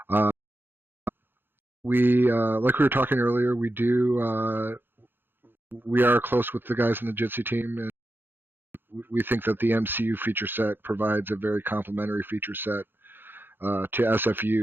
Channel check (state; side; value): late; left; 0.10 ms